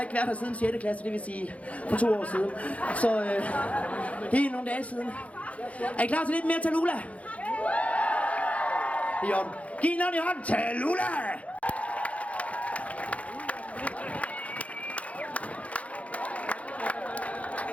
ikke været her siden 6. klasse, det vil sige for 2 år siden. Så det er nogle dage siden. Er I klar til lidt mere Tallulah? Det er i orden. Giv en ordentlig hånd. Tallulah!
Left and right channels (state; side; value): late; right; 0.066 ms